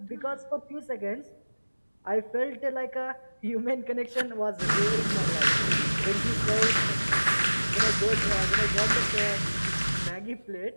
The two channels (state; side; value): inverted; both; correlation -1.00